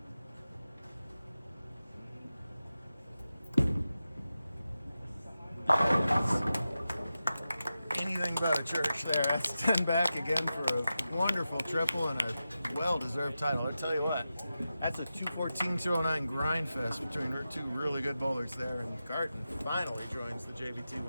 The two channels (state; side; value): inverted; both; correlation -0.92